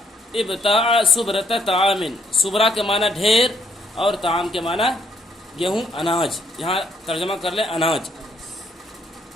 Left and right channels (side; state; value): both; normal; correlation 0.70